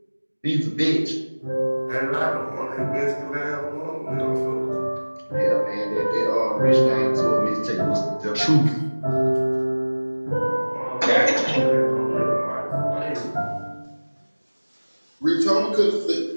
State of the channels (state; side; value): inverted; both; correlation -1.00